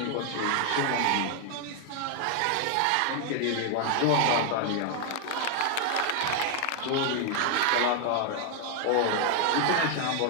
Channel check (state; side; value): different; both; correlation 0.00